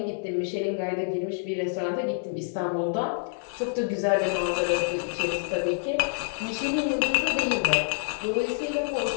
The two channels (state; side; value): silent; right; 60 dB below the other